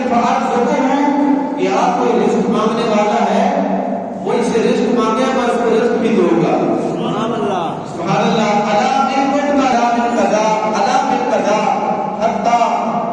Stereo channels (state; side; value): identical; both; correlation 1.00